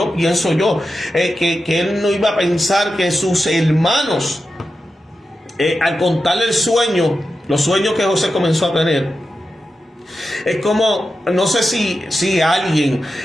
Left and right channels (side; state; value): both; normal; correlation 0.91